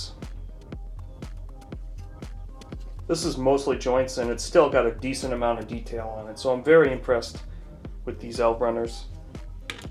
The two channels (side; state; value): both; identical; correlation 1.00